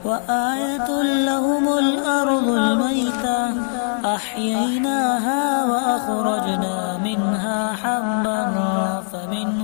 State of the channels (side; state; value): right; silent; 55 dB below the other